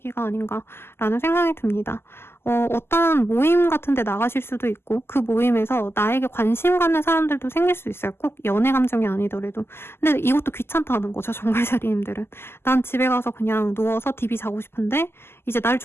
아닌가라는 생각이 듭니다. 어떤 모임 같은 데 나가실 수도 있고 그 모임에서 나에게 관심 갖는 사람들도 생길 수 있어요. 꼭 연애 감정이 아니더라도. 근데 이것도 귀찮다는 거죠. 정갈자리님들은. 난 집에 가서 그냥 누워서 DB 자고 싶은데 이제 날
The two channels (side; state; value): right; late; 0.12 ms